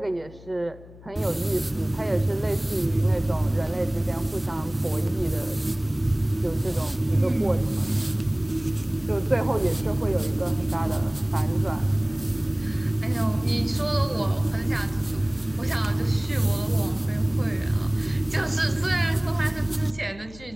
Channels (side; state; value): left; noise; hum, 20 dB below the sound